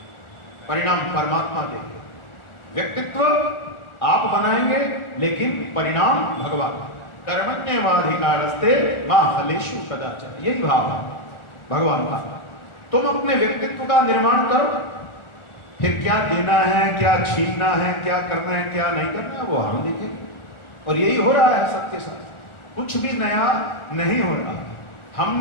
परिणाम परमात्मा देगी। व्यक्तित्व आप बनाएंगे लेकिन परिणाम भगवान। कर्मण्येवाधिकारस्ते मा फलेषु कदाचन, यही भाव है भगवान का। तुम अपने व्यक्तित्व का निर्माण करो, फिर क्या देना है, क्या छीनना है, क्या करना है, क्या नहीं करना है, वो हम देखेंगे। और यही हो रहा है सबके साथ, कुछ भी नया नहीं हो रहा।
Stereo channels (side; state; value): right; late; 1.4 ms